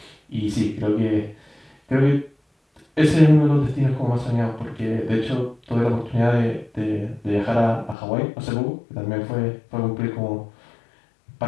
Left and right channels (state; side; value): drops out; right; at 8.0 s